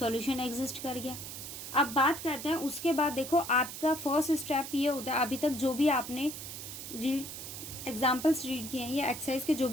एग्जिस्ट कर गया। अब बात करते हैं उसके बाद। देखो, आपका फर्स्ट स्टेप ये होता है, अभी तक जो भी आपने रीड एग्जाम्पल्स रीड किए हैं या एक्सरसाइज के जो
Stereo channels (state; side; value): noise; right; hiss, 9 dB below the sound